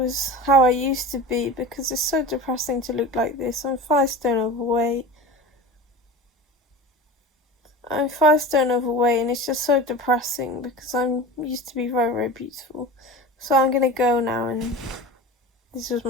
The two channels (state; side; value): normal; both; correlation 0.33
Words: how I used to be, because it's so depressing to look like this. I'm 5 stone overweight. And it's just so depressing because I'm used to be very, very beautiful. So I'm gonna go now, and this was